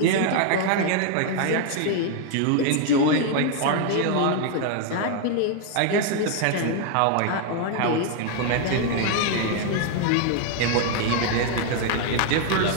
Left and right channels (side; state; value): both; different; correlation 0.00